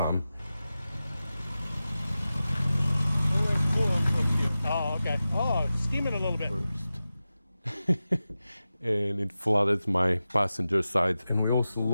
Coolant from here. Oh, okay. Oh, it's steaming a little bit. First. And it flooded my passenger side, and we also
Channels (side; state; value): both; inverted; correlation -0.94